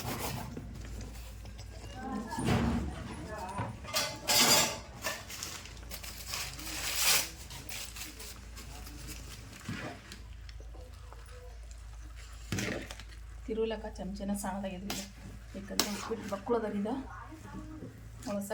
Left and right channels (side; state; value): both; identical; correlation 1.00